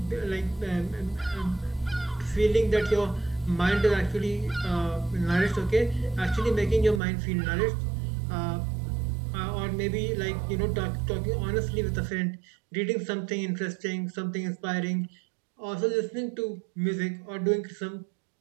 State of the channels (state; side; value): drops out; left; at 7.0 s